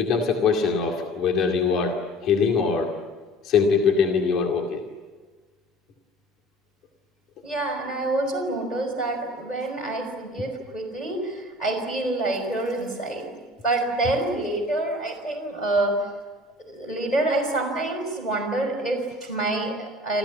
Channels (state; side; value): normal; both; correlation 0.46